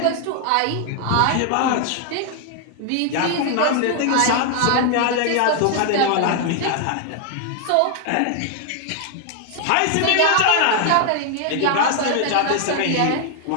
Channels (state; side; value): different; both; correlation 0.00